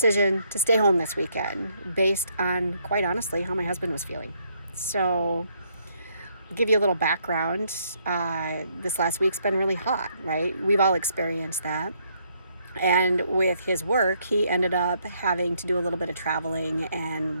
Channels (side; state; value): both; inverted; correlation -0.71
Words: to stay home this weekend based on, quite honestly, how my husband was feeling. So give you a little background. This last week's been really hot, right? We've all experienced that. And with his work, he ended up having to do a little bit of traveling,